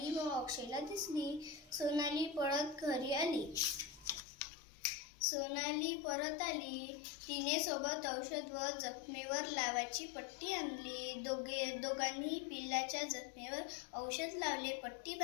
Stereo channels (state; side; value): drops out; right; at 4.2 s